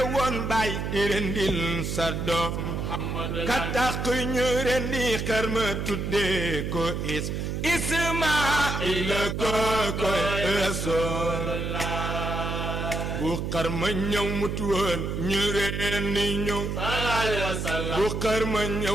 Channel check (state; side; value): noise; right; hum, 3 dB below the sound